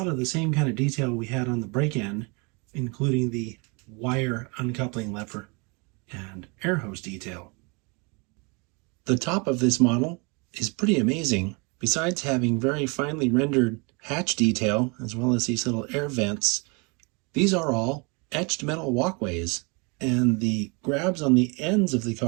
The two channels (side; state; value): left; quieter; 30.9 dB